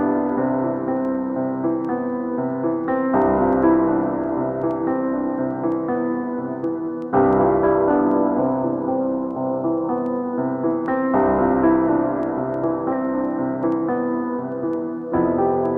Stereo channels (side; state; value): both; identical; correlation 1.00